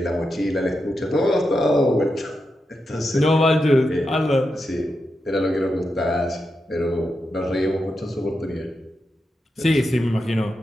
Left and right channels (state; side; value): normal; both; correlation 0.87